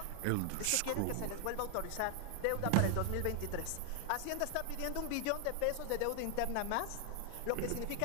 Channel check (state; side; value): different; both; correlation 0.00